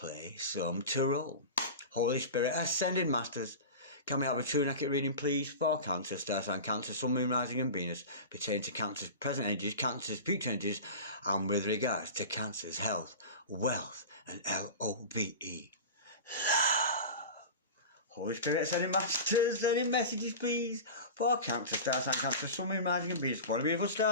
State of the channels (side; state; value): both; inverted; correlation -0.30